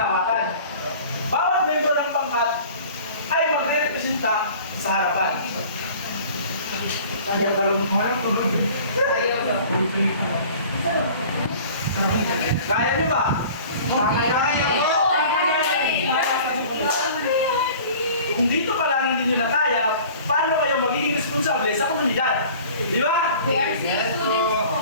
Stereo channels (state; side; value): inverted; both; correlation -0.45